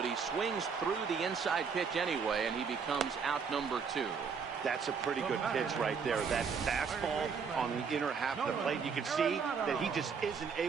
he swings through the inside pitch anyway, and he becomes out number 2. That's a pretty good pitch right there. That fastball on the inner half of the plate. You can see that he just isn't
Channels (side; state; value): left; quieter; 5.9 dB